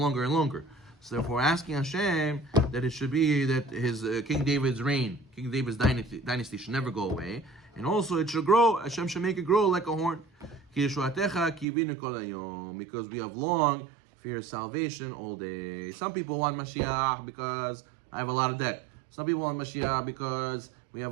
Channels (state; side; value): drops out; left; at 11.7 s